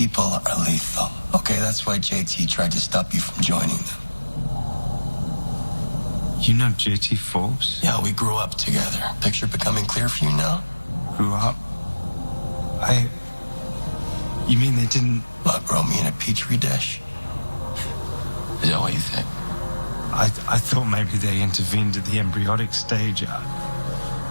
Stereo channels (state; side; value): inverted; both; correlation -1.00